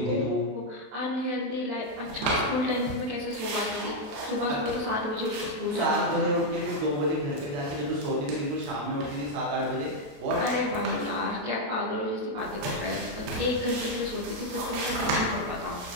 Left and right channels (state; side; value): late; left; 28 ms